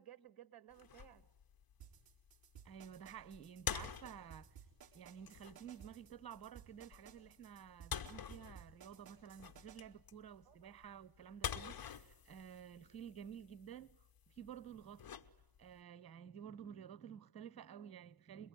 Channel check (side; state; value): right; late; 1.0 ms